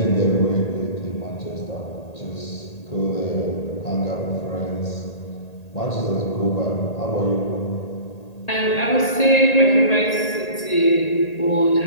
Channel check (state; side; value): late; right; 1.8 ms